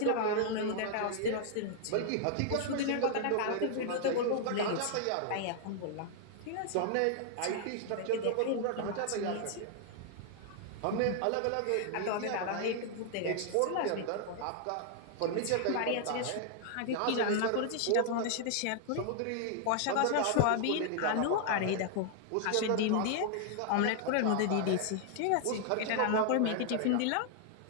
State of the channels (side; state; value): both; different; correlation 0.00